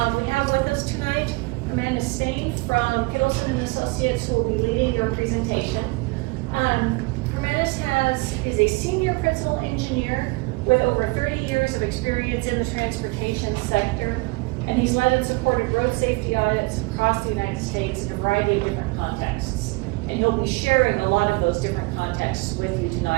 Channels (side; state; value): left; quieter; 25.6 dB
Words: We have with us tonight Hermanus Steyn from Kittleson & Associates, who will be leading your presentation. Hermanus is a senior principal engineer with over 30 years of experience in the transportation sector, and he's led and supported road safety audits across the United States in a variety of different contexts. And he'll be sharing a lot of those different contexts with you